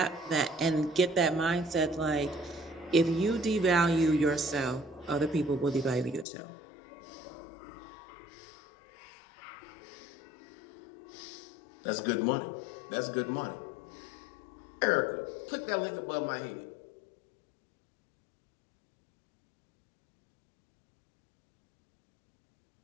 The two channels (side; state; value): right; drops out; at 6.2 s